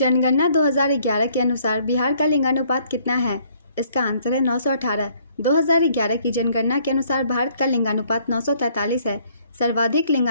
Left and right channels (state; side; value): inverted; both; correlation -0.64